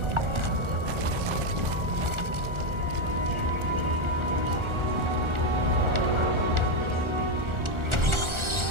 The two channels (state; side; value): late; left; 1.4 ms